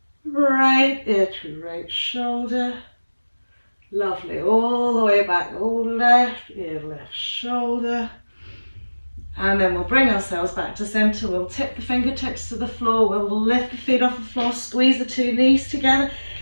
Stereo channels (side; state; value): both; inverted; correlation -1.00